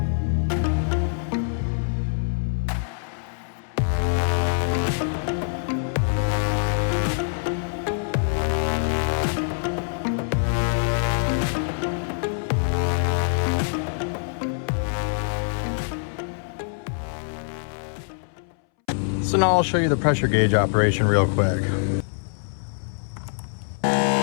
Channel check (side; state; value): right; silent; 62 dB below the other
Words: So now I'll show you the pressure gauge operation real quick.